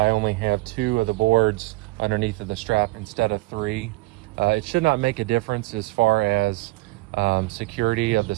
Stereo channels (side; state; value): left; quieter; 21.8 dB